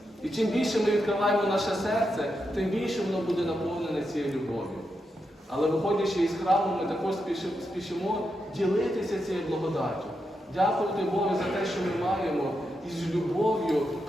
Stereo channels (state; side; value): normal; both; correlation 0.85